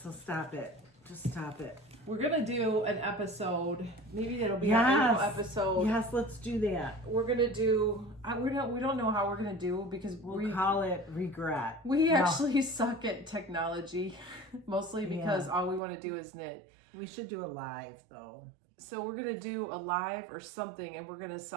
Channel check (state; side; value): drops out; left; at 15.8 s